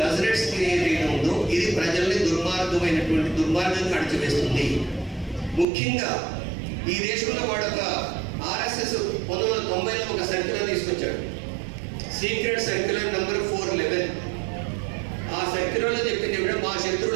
కసరెట్స్ థియరీ ఏదైతే ఉందో, ఇది ప్రజల్ని దుర్మార్గంగా అణచివేస్తుంది. ముఖ్యంగా ఈ దేశంలో వాడు ఒక ఆర్ఎస్ఎస్ 1990లో ఒక సర్క్యులర్ తీసుకొచ్చాడు, సీక్రెట్ సర్క్యులర్ నెంబర్ 411. ఆ సర్క్యులర్లో చెప్పింది ఏమిటంటే మా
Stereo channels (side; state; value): left; drops out; at 5.7 s